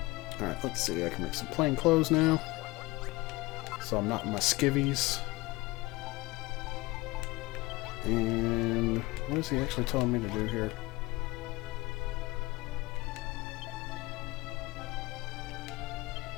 Alright, let's see. I can make some plain clothes now. So I'm not in my skivvies. And what is he actually telling me to do here?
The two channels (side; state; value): right; quieter; 21.3 dB